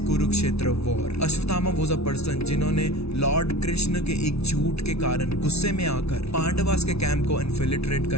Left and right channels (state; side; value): late; right; 0.79 ms